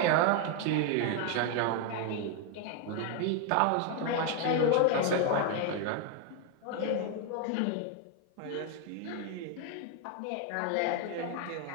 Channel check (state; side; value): different; both; correlation 0.01